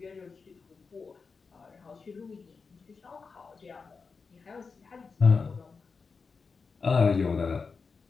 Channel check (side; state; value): right; quieter; 4.9 dB